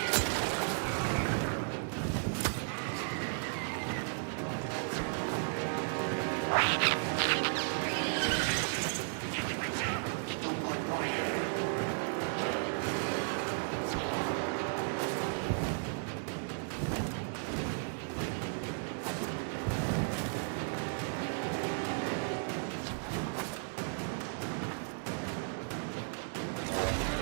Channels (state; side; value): silent; left; 55 dB below the other